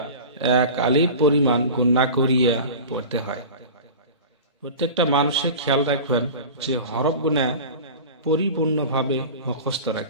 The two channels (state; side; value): inverted; both; correlation -0.34